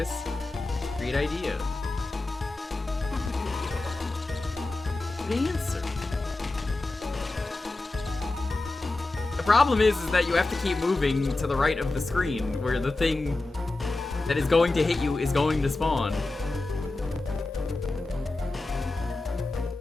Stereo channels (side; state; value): right; quieter; 3.1 dB